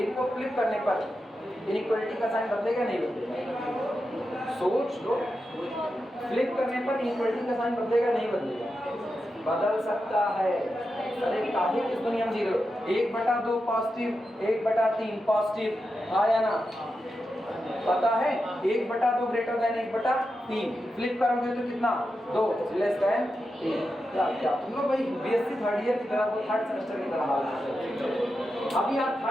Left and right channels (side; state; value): both; normal; correlation 0.89